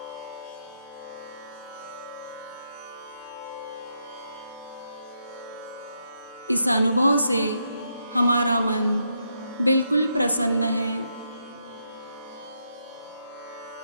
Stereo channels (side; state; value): both; inverted; correlation -0.79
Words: इस अनुभव से हमारा मन बिल्कुल प्रसन्न है।